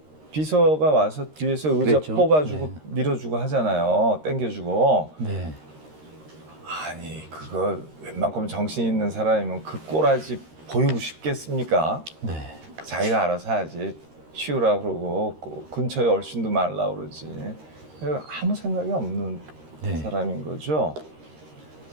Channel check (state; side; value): late; left; 13 ms